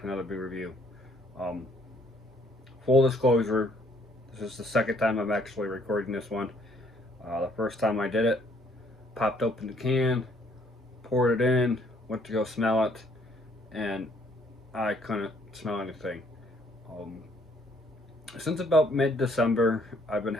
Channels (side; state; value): both; normal; correlation 0.64